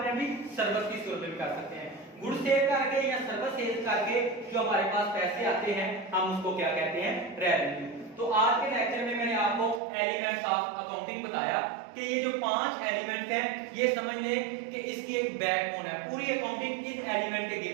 अपनी सर्विस की सूरत में भी कर सकते हैं। गुड्स सेल करके या सर्विस सेल करके जो हमारे पास पैसे आते हैं हम उसको क्या कहते हैं, रेवेन्यू। तो आज के लेक्चर में मैंने आपको एलिमेंट्स ऑफ अकाउंटिंग बताया कि ये जो 5 एलिमेंट्स हैं ये समझ लें कि इसकी एक बैकबोन है। पूरी अकाउंटिंग इस एलिमेंट के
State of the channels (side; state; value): left; drops out; at 9.8 s